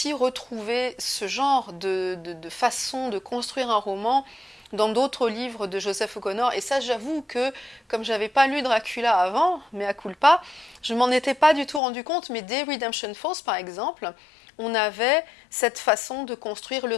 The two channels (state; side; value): drops out; right; at 11.8 s